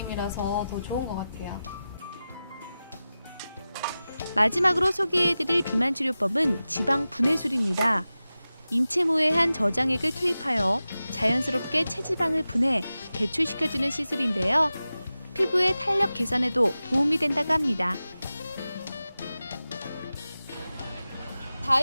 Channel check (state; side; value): inverted; both; correlation -0.95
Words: 더 좋은 것 같아요. 마지막으로 소개해드릴 비만 치료법은 지방 분해술입니다. 인체모의 한 저장액을 투입하여 자연스럽게 체지방을 분해 배출시켜주는 시술인데요. 피부의 탄력 개선에도 도움이 된다고 합니다.